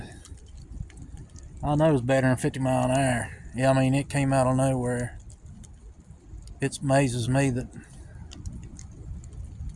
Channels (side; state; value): both; identical; correlation 1.00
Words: I know it's better than 50 mile an hour. Yeah, I mean, it came out of nowhere. It amazes me that